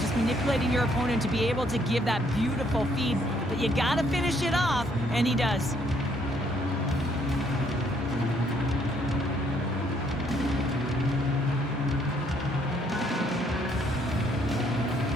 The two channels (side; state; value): both; normal; correlation 0.68